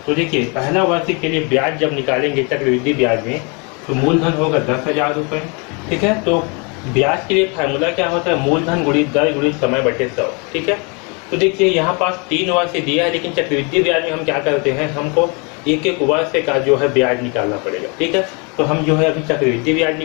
तो देखिए पहला वर्ष के लिए ब्याज जब निकालेंगे चक्रवृद्धि ब्याज में तो मूलधन होगा 10,000 रुपये। ठीक है, तो ब्याज के लिए फार्मूला क्या होता है, मूलधन गुणित दर गुणित समय बटे 100। ठीक है, तो देखिए यहाँ पास 3 वर्ष दिया है, लेकिन चक्रवृद्धि ब्याज में हम क्या करते हैं, हमको एक एक वर्ष का जो है ब्याज निकालना पड़ेगा। ठीक है, तो हम जो है अभी चक्रवृद्धि ब्याज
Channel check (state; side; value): quieter; right; 32.7 dB